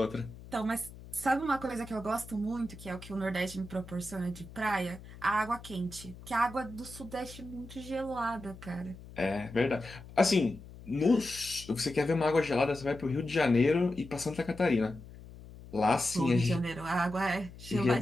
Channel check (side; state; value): left; noise; hum, 17 dB below the sound